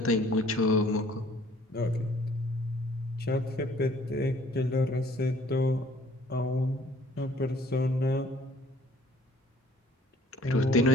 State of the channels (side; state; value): both; normal; correlation 0.56